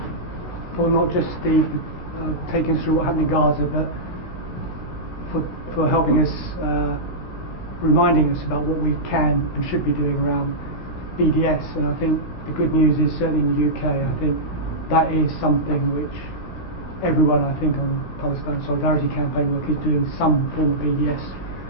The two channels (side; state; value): right; late; 16 ms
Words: not just the taking us through what happened in Gaza, but for helping us, reminding us about what we can and should be doing around BDS. And I think the good news is, certainly in the UK, I think that is something which everyone, I think, on Palestine Solidarity Campaign work is doing some form of BDS.